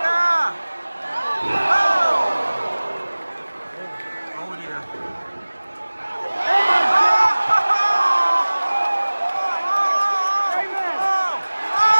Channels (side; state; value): both; inverted; correlation -1.00